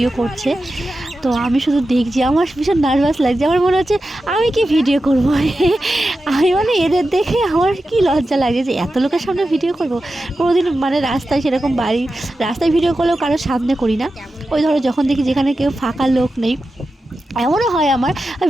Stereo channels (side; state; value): both; normal; correlation 0.92